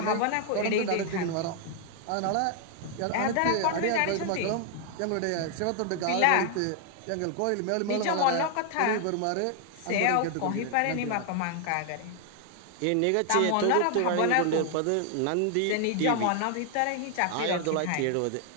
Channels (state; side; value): different; both; correlation 0.00